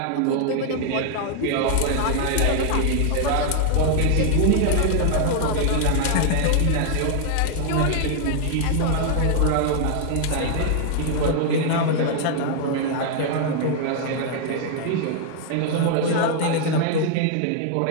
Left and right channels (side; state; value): both; different; correlation 0.00